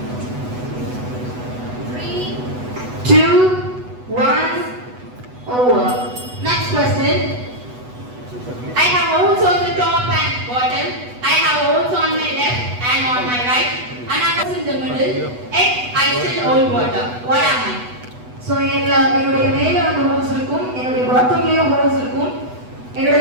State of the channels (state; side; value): late; left; 8.1 ms